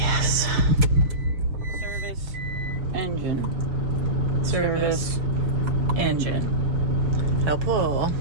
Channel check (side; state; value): left; late; 7.1 ms